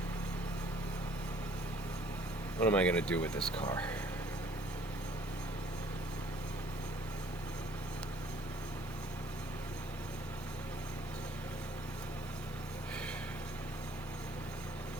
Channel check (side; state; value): both; normal; correlation 0.58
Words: What am I gonna do with this car?